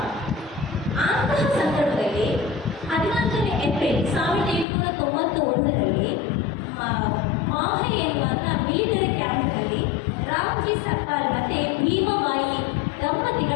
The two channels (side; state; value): right; drops out; at 4.7 s